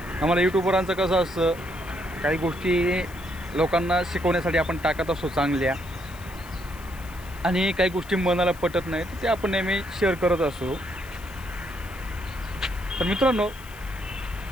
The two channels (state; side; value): noise; left; hiss, 20 dB below the sound